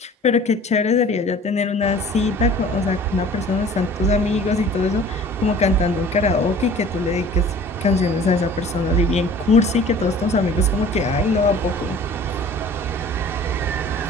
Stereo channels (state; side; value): normal; both; correlation 0.47